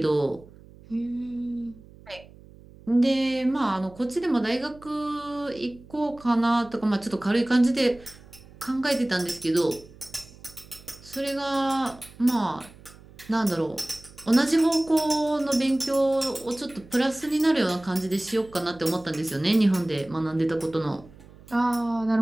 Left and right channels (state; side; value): noise; right; hum, 22 dB below the sound